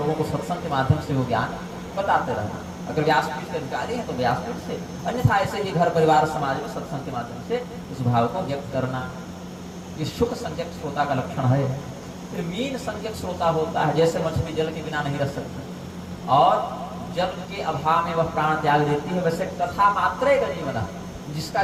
को सत्संग के माध्यम से वो ज्ञान बताते रहना। अगर व्यासपीठ के अधिकारी हैं तो व्यासपीठ से, अन्यथा ऐसे ही घर परिवार समाज में सत्संग के माध्यम से उस भाव को व्यक्त करना। ये शुक संज्ञक श्रोता का लक्षण है। फिर मीन संज्ञक श्रोता होता है, जैसे मछली जल के बिना नहीं रह सकती और जल के अभाव में वह प्राण त्याग देती है, वैसे कथा मात्र का जीवन है, जिसका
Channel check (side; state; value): both; identical; correlation 1.00